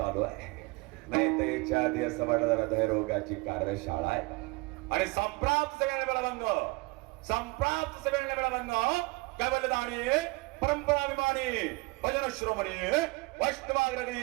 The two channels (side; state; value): left; quieter; 25.6 dB